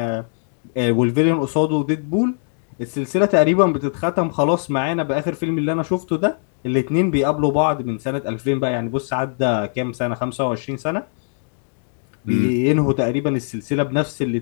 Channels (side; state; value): right; silent; 65 dB below the other